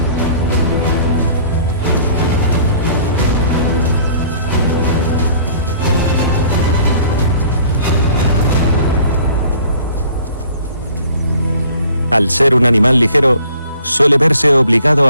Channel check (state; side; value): inverted; both; correlation -0.53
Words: Al ser un animal ligero, suele verse obligado